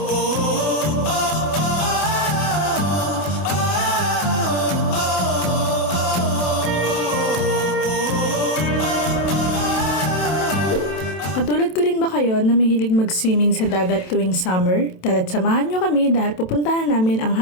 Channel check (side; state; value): right; late; 27 ms